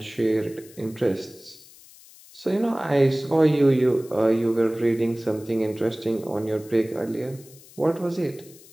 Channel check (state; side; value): noise; left; hiss, 22 dB below the sound